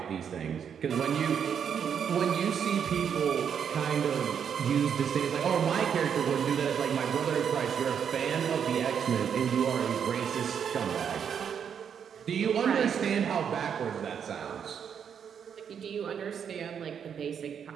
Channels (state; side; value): quieter; left; 7.7 dB